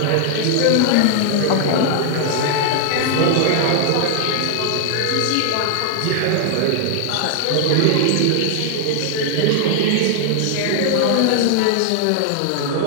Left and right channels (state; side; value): different; both; correlation 0.00